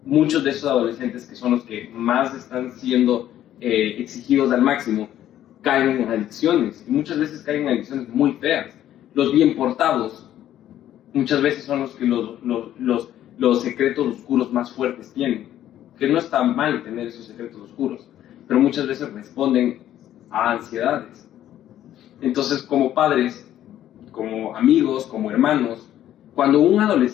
muchos de esos adolescentes, que son los que más están siendo exigidos al máximo, caen en adicciones. Y muchas veces caen en adicciones muy feas. Los bien portados muchas veces son los que los secretos oscuros más fuertes tienen. Que no está mal tener esos secretos oscuros, pero muchas veces responden a ansiedades. Entonces, como padres, como amigos, como hermanos, cuando un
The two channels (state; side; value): quieter; right; 12.0 dB